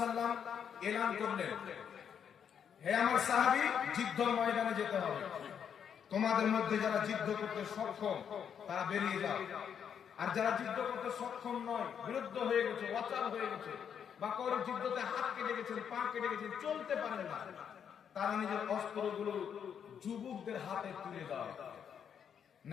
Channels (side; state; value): right; quieter; 7.9 dB